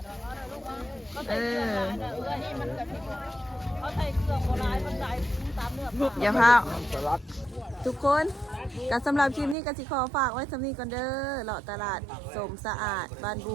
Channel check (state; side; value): drops out; left; at 9.6 s